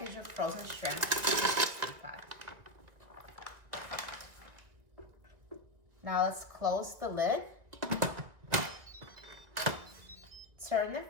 of frozen shrimp in the Instant Pot. Now let's close the lid. Turn the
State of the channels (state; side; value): late; left; 1.7 ms